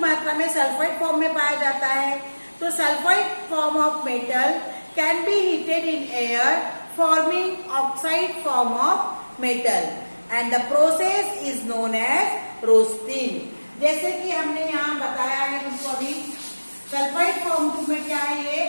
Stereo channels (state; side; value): inverted; both; correlation -1.00